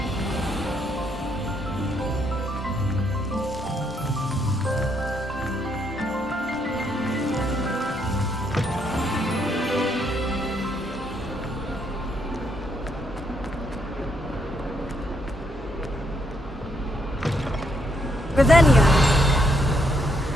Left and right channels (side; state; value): both; normal; correlation 0.75